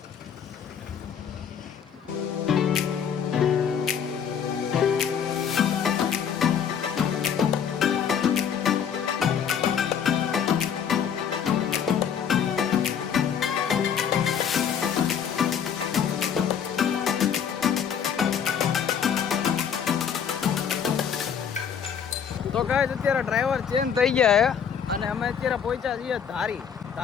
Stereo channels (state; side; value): quieter; right; 7.8 dB